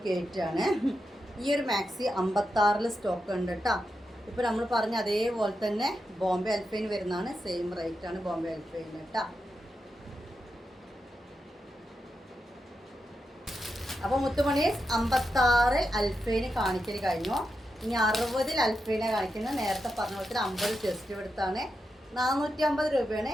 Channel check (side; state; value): both; normal; correlation 0.87